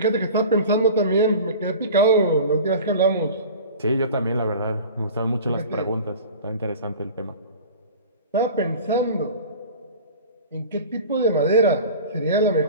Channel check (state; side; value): inverted; both; correlation -0.38